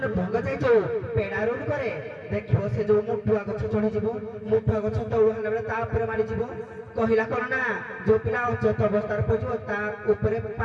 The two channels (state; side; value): identical; both; correlation 1.00